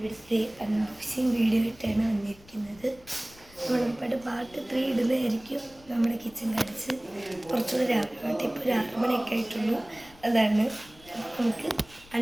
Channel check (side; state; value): left; noise; rumble, 24 dB below the sound